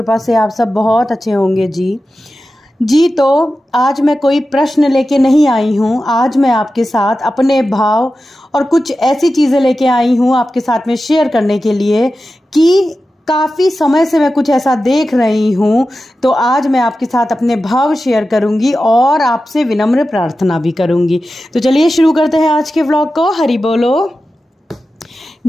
से आप सब बहुत अच्छे होंगे जी। तो आज मैं कोई प्रश्न लेके नहीं आई हूँ। आज मैं आपके साथ अपने भाव और कुछ ऐसी चीज़ें लेके आई हूँ आपके साथ में शेयर करने के लिए कि काफ़ी समय से मैं कुछ ऐसा देख रही हूँ। तो आज मैं आपके साथ अपने भाव शेयर करूँगी और आपसे विनम्र प्रार्थना भी करूँगी। तो चलिए शुरू करते हैं आज के व्लॉग को। हरी बोलो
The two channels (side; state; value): both; normal; correlation 0.93